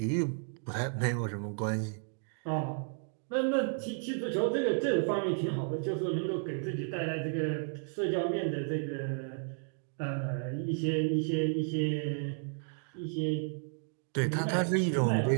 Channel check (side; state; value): left; silent; 56 dB below the other